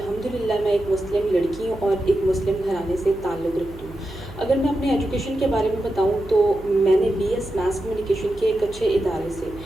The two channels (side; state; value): right; noise; hum, 17 dB below the sound